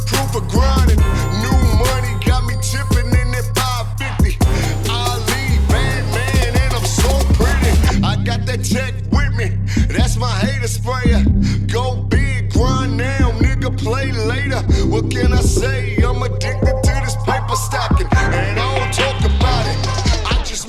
proof of grinding. New money got me tipping in that 550. Ali, bad man, and I'm so pretty. I got that check with me, that's my hater sprayer. Go big, grind now, nigga, play later. What can I say? I'm addicted to this paper stacking, and I don't talk about it, I just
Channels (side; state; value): both; identical; correlation 1.00